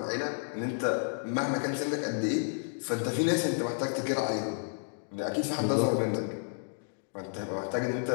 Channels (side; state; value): right; silent; digital silence